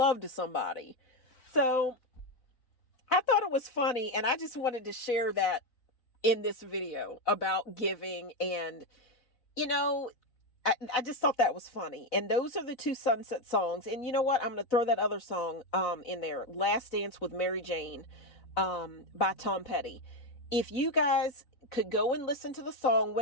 to somebody. So I thought it was funny, and I just wanted to share that in this video about giving, and I just thought that was funny. And those are the 2 Sunset songs. And you know what? I'm going to throw that other song in there. Last Dance with Mary Jane by Tom Petty. If you guys could go and listen to the song,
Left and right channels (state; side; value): late; right; 4.0 ms